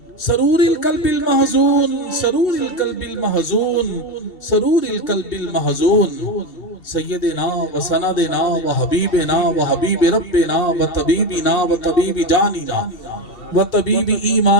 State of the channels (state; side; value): late; right; 2.7 ms